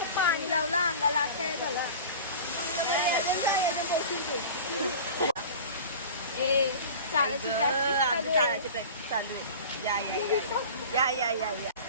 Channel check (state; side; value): inverted; both; correlation -0.37